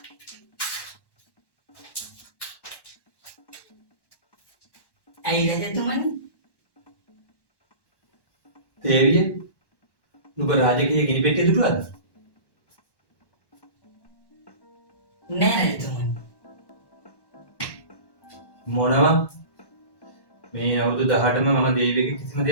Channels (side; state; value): right; late; 1.1 ms